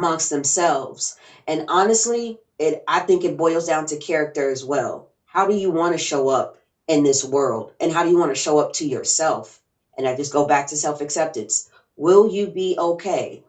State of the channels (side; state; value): both; identical; correlation 1.00